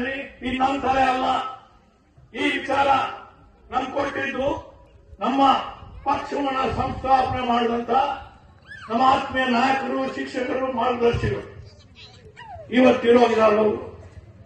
ಇದು ನಮ್ಮ ತಲೆ ಅಲ್ಲ. ಈ ವಿಚಾರ ನಮ್ಗೆ ಕೊಟ್ಟಿದ್ದು ನಮ್ಮ ಪಕ್ಷವನ್ನ ಸಂಸ್ಥಾಪನೆ ಮಾಡಿದಂತ ನಮ್ಮ ಆತ್ಮೀಯ ನಾಯಕರು, ಶಿಕ್ಷಕರು, ಮಾರ್ಗದರ್ಶಿಗಳು ಇವತ್ತಿರೋಗಿದ್ದಾರೆ.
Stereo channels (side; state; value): both; identical; correlation 1.00